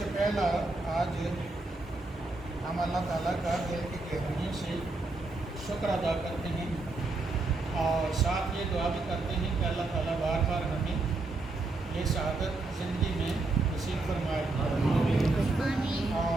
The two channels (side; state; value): left; quieter; 3.2 dB